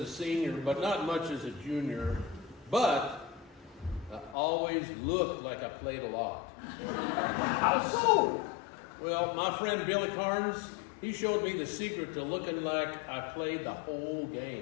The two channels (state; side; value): drops out; right; at 4.4 s